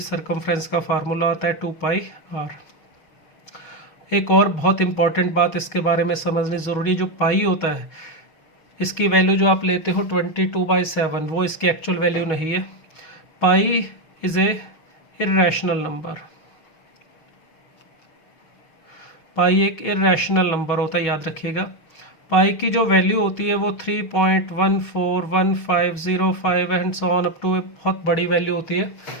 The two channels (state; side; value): late; right; 6.6 ms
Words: का फार्मूला आता है 2πr। एक और बहुत इंपॉर्टेंट बात इसके बारे में समझनी ज़रूरी, जो पाई होता है इसकी वैल्यू जो आप लेते हो 22/7, वो इसकी एक्चुअल वैल्यू नहीं है। पाई इज़ ए इर्रेशनल नंबर, पाई एक इर्रेशनल नंबर होता है, याद रखिएगा। पाई की जो वैल्यू होती है वो 3.141505 and so on up to, बहुत बड़ी वैल्यू होती है।